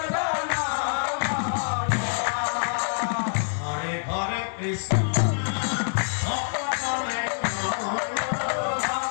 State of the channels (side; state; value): right; silent; digital silence